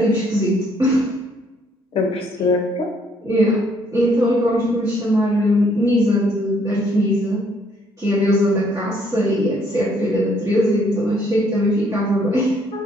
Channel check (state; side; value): normal; both; correlation 0.66